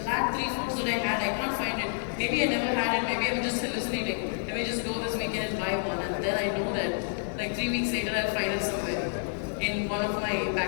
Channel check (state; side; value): silent; right; digital silence